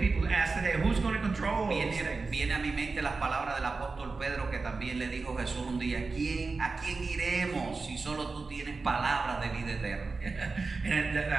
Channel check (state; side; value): quieter; left; 4.1 dB